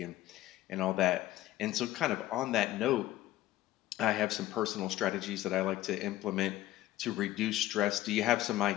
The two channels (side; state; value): right; quieter; 15.0 dB